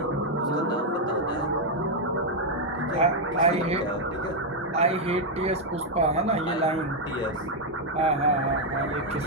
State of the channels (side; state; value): both; normal; correlation -0.01